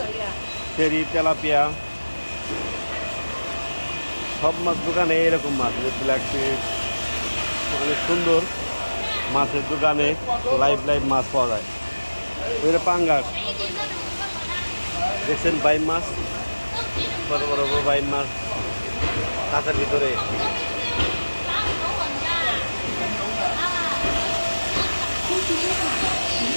শেরি, তেলাপিয়া, সব মাছ দোকানে এরকম মাছ, ব্ল্যাক ফিশ অনেক সুন্দর মাছের দোকানে লাইভ মাছ পাওয়া যায়। ওইটা পাঙ্গাস দেখছেন, বাইম মাছ, বড় বড় বাইম মাছ কাঁচার ভিতরে।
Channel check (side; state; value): both; inverted; correlation -1.00